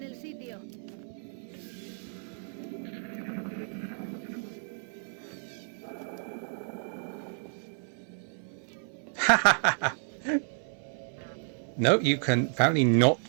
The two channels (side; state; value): left; silent; 57 dB below the other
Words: el sitio. No, you can apparently not